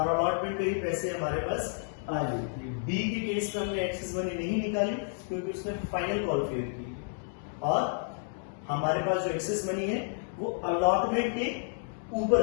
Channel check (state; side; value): silent; right; digital silence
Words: अलॉटमेंट के ही पैसे हमारे पास आ गई थी। बी के केस में हमने एक्सेस मनी नहीं निकाली क्योंकि उसने फाइनल कॉल फेल की, और हमारे पास जो एक्सेस मनी है वो अलॉटमेंट के